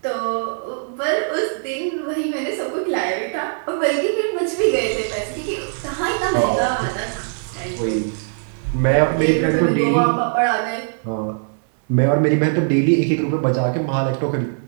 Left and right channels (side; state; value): left; silent; 65 dB below the other